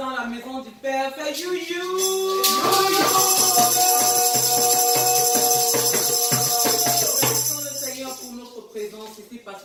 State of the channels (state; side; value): identical; both; correlation 1.00